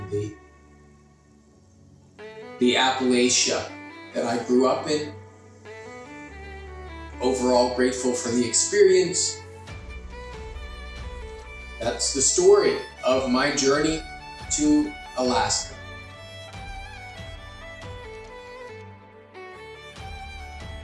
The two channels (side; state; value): both; identical; correlation 1.00